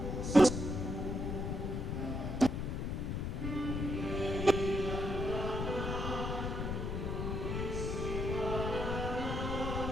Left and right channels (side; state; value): left; noise; rumble, 2 dB below the sound